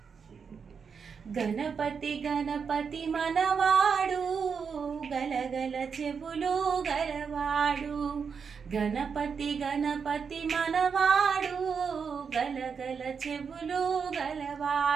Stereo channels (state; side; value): quieter; left; 6.1 dB